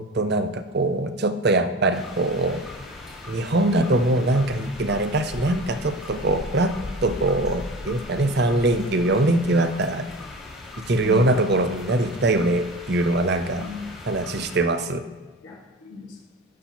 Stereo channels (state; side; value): normal; both; correlation 0.34